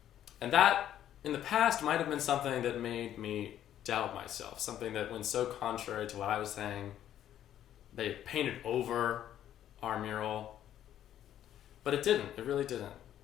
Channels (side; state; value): right; quieter; 11.2 dB